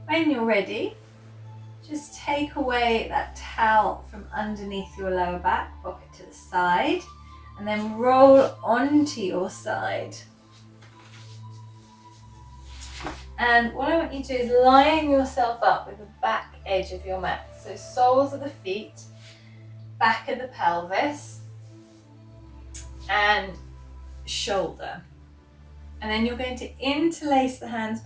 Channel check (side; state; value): both; identical; correlation 1.00